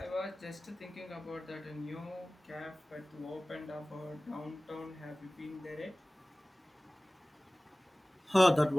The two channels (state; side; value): normal; both; correlation 0.98